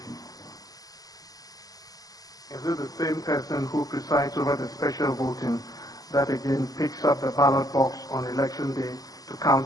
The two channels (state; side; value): late; right; 0.18 ms